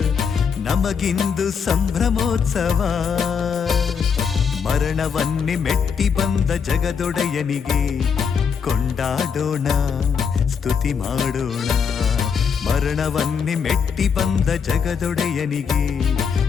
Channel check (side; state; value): right; quieter; 6.5 dB